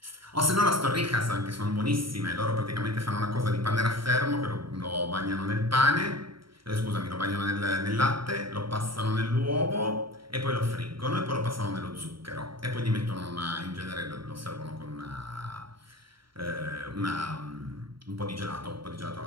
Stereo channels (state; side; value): late; left; 0.74 ms